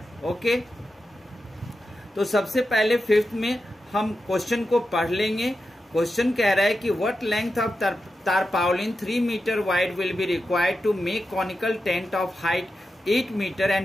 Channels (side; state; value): both; normal; correlation 0.90